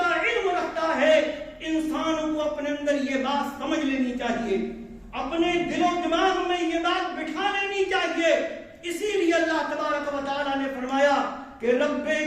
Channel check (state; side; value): identical; both; correlation 1.00